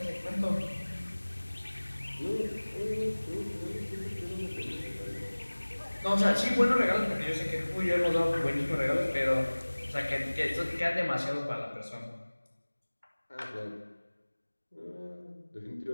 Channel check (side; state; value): both; inverted; correlation -1.00